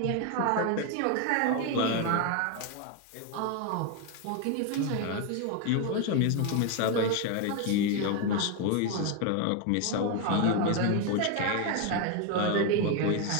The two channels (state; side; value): different; both; correlation 0.01